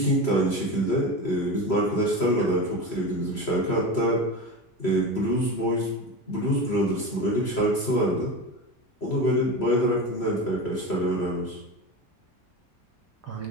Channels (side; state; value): right; late; 3.0 ms